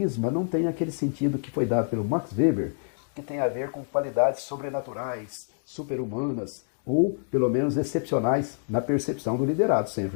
não tem aquele sentido que foi dado pelo Max Weber, que tem a ver com qualidades sobrenaturais, super-humanas, ou pelo menos excepcionais na percepção do liderado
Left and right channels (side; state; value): right; silent; digital silence